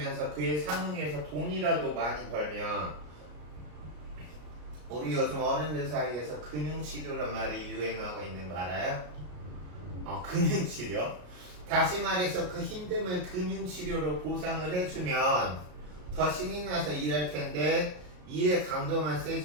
그에 상응해서 돈이라도 많이 벌면 우리 요즘 어른들 사이에서 금융치료란 말이 유행하고 있는 거 알아요? 금융치료. 다시 말해서 그 힘듦을 금융치료로 보상을 해주면 더 신이 나서 일할 텐데 일의 강도만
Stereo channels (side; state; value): left; late; 33 ms